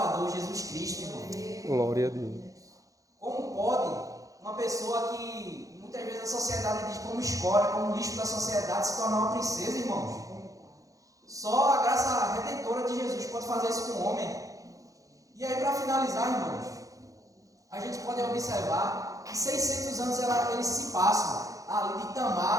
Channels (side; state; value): left; late; 0.16 ms